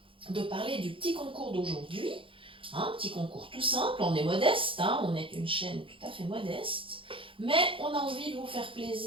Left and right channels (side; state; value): left; late; 0.25 ms